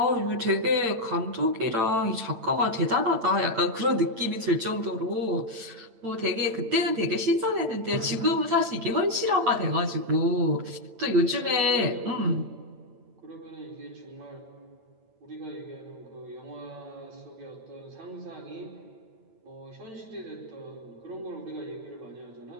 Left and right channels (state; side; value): late; left; 8.9 ms